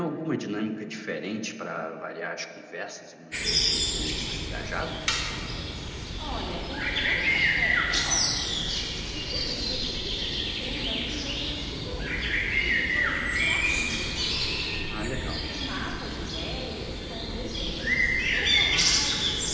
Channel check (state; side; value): identical; both; correlation 1.00